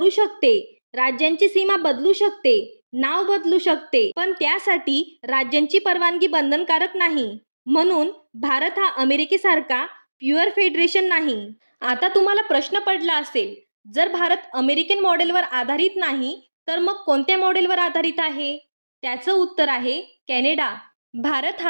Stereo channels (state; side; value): inverted; both; correlation -1.00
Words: शकते. राज्यांची सीमा बदलू शकते, नाव बदलू शकते, पण त्यासाठी राज्यांची परवानगी बंधनकारक नाही. म्हणून भारत हा अमेरिकेसारखा प्युअर फेडरेशन नाही. आता तुम्हाला प्रश्न पडला असेल, जर भारत अमेरिकन मॉडेलवर आधारित नाही, तर मग कोणत्या मॉडेलवर आधारित आहे? त्याचं उत्तर आहे कॅनडा. भारत